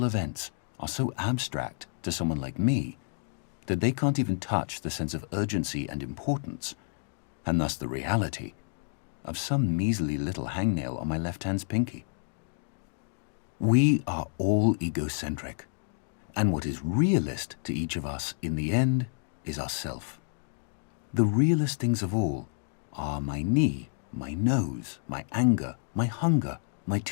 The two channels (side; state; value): right; silent; digital silence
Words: events are so abstract to someone like me that they can't even touch the sense of urgency and importance, and thus the reality, of some measly little hangnail on my left hand's pinky. We are all egocentric, and what is realist to each of us in the end is ourself. The realest things of all are my knee, my nose, my anger, my hunger, my